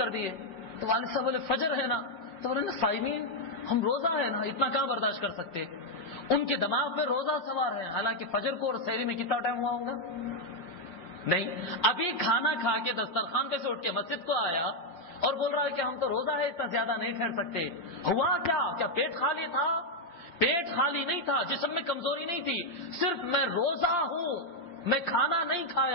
دی ہے. تو والد صاحب بولے فجر ہے نا، تو بولے نا صائمین، ہم روزہ ہے نا، اتنا کہاں برداشت کر سکتے. ان کے دماغ پہ روزہ سوار ہے، حالانکہ فجر کو اور سحری میں کتنا ٹائم ہوا ہوگا؟ نہیں. ابھی کھانا کھا کے دسترخوان پہ سے اٹھ کے مسجد کو آیا اور بول رہا ہے کہ ہم تو روزہ ہے، اتنا زیادہ نہیں ٹھہر سکتے. ہوا کیا پیٹ خالی تھا؟ پیٹ خالی نہیں تھا، جسم میں کمزوری نہیں تھی، صرف میں روزہ ہوں، میں کھانا نہیں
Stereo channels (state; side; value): late; right; 5.7 ms